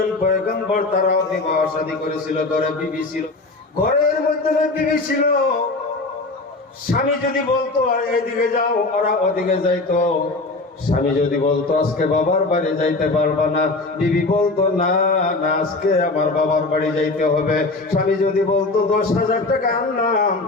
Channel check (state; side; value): quieter; right; 3.3 dB